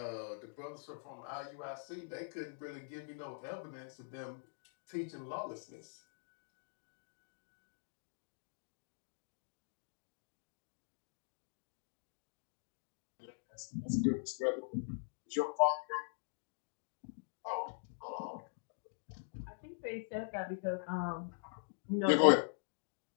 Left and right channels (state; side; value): silent; right; digital silence